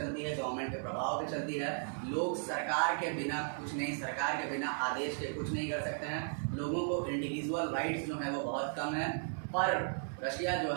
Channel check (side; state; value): left; silent; 54 dB below the other